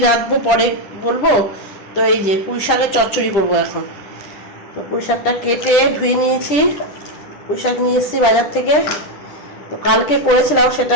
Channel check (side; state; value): right; late; 10 ms